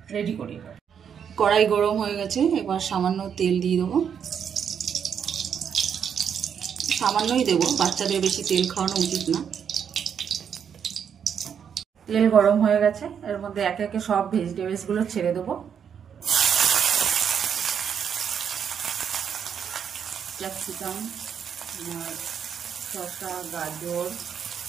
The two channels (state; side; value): quieter; left; 7.8 dB